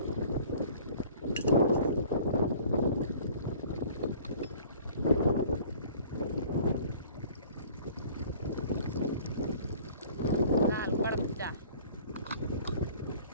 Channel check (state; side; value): inverted; both; correlation -0.49